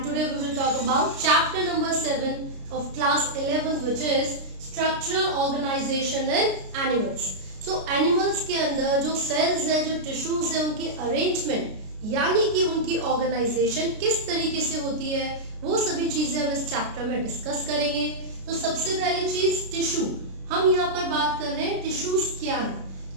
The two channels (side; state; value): left; late; 33 ms